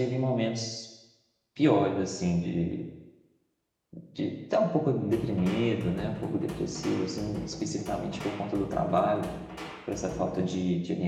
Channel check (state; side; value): identical; both; correlation 1.00